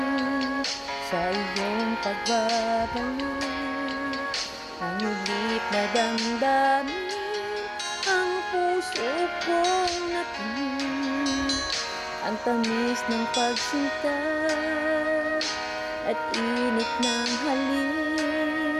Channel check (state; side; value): identical; both; correlation 1.00